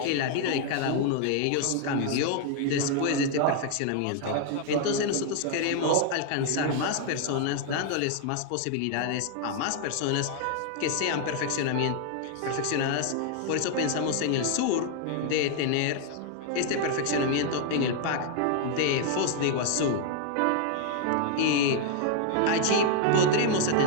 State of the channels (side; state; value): both; different; correlation 0.00